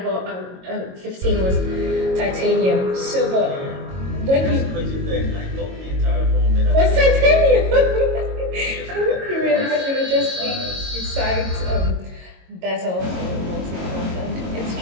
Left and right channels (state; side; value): late; left; 22 ms